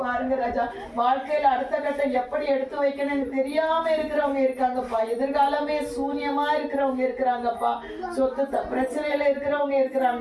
பாருங்க ராஜா. வாழ்க்கையில அடுத்த கட்டம் எப்படி எடுத்து வைக்கணும்னு தெரியாம இருக்கிறவங்க இருக்காங்கப்பா. எதிர்காலமே சூன்யமா இருக்கிறவங்க இருக்கிறாங்கப்பா. சொத்து பிரச்சனையில இருக்கிறவங்க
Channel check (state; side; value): identical; both; correlation 1.00